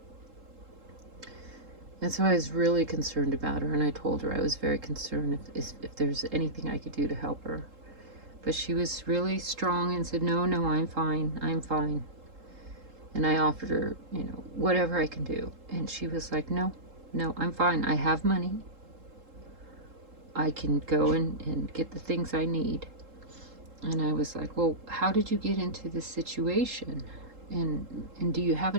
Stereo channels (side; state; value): left; late; 3.7 ms